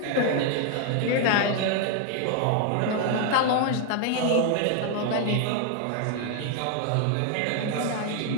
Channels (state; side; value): different; both; correlation 0.00